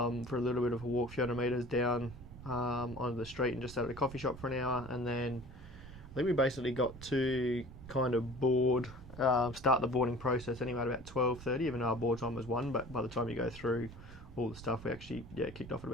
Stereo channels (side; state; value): right; noise; rumble, 16 dB below the sound